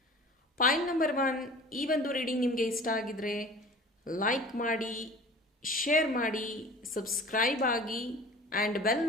ಪಾಯಿಂಟ್ ನಂಬರ್ 1, ಈ ಒಂದು ರೀಡಿಂಗ್ ನಿಮಗೆ ಇಷ್ಟ ಆಗಿದ್ರೆ ಲೈಕ್ ಮಾಡಿ, ಶೇರ್ ಮಾಡಿ, ಸಬ್ಸ್ಕ್ರೈಬ್ ಆಗಿ, ಆ್ಯಂಡ್ ಬೆಲ್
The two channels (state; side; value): normal; both; correlation 0.42